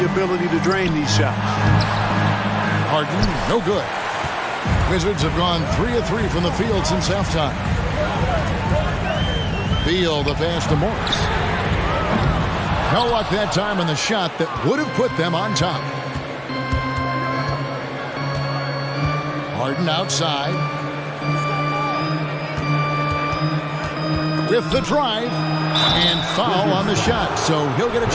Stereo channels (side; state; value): both; identical; correlation 1.00